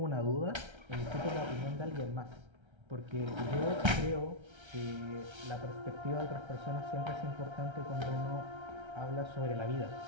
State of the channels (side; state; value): left; late; 1.3 ms